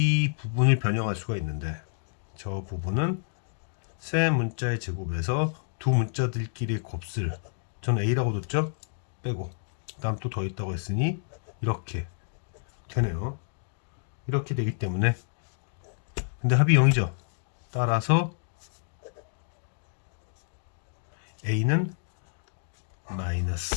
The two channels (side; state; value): right; silent; digital silence